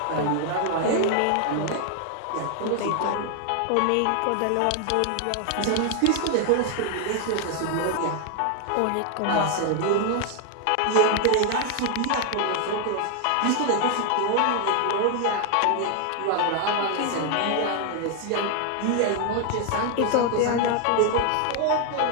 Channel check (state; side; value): different; both; correlation 0.00